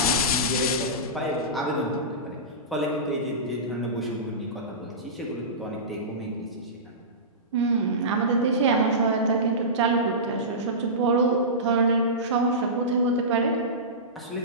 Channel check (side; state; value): both; normal; correlation -0.20